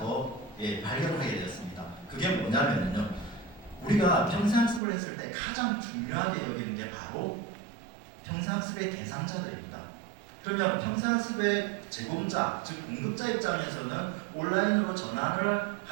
발견을 하게 되었습니다. 그게 뭐냐면요. 우리가 평생학습을 했을 때 가장 중요하게 여기는 게 바로 평생학습의 대상자들입니다. 그러면 평생학습의 제공자, 즉 공급자 입장에서는 온라인으로 전환을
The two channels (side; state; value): left; drops out; at 4.8 s